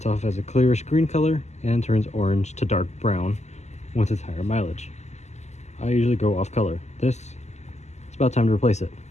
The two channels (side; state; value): right; late; 0.33 ms